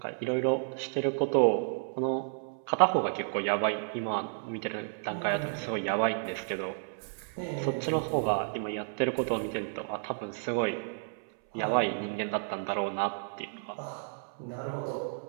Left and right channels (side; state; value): left; silent; 57 dB below the other